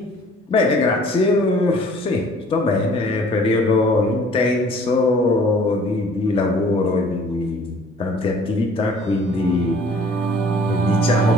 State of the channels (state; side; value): normal; both; correlation 0.53